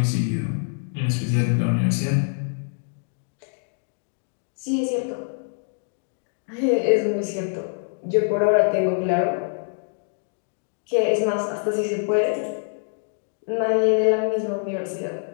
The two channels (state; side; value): silent; right; 62 dB below the other